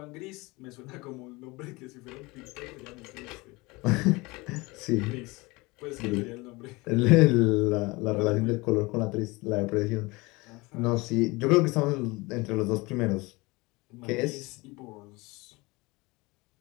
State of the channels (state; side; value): quieter; right; 23.8 dB